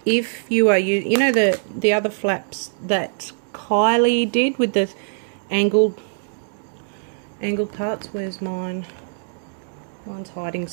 if you are you know the other flaps that Kylie did with the angled parts. Where's mine? Mine's hiding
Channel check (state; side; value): silent; left; digital silence